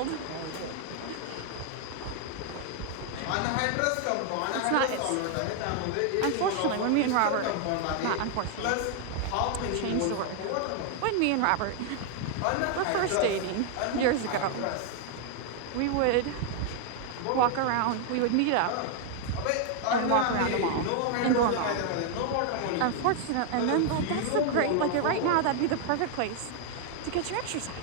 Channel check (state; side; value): different; both; correlation 0.00